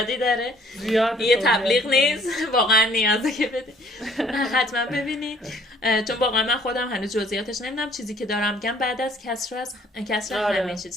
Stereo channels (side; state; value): both; normal; correlation 0.59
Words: داره، یه تبلیغ نیست، واقعا نیازه که بدین. حتما ببینید چون واقعا من خودم هنوز جزئیاتش نمیدونم. چیزی که دارم میگم بعد از کسر همه